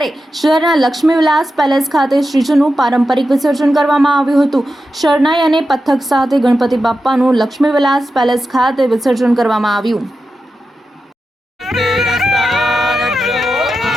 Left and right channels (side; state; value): both; normal; correlation 0.90